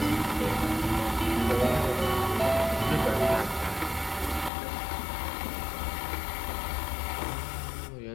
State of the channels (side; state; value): right; drops out; at 4.5 s